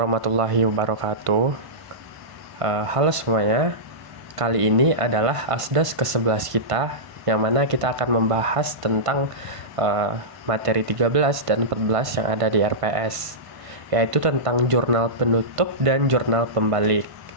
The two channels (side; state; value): left; late; 1.5 ms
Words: wabarakatuh. Halo semuanya, kali ini adalah Asdas ke-11 kita, yang mana kita akan membahas tentang materi 13 dan 14 yang ada di RPS, yaitu tentang jurnal penutup dan jurnal pembalik.